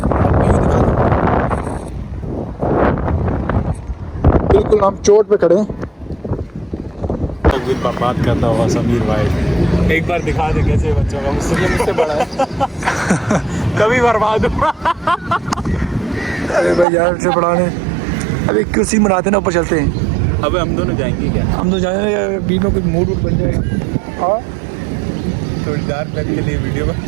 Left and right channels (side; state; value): left; drops out; at 16.9 s